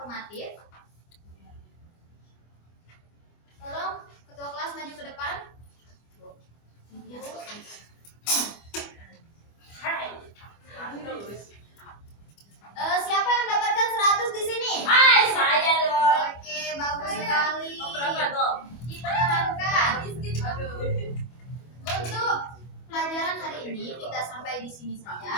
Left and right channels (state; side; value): late; right; 25 ms